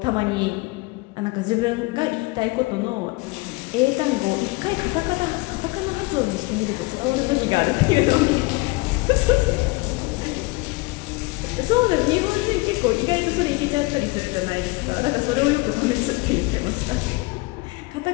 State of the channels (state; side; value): quieter; right; 24.3 dB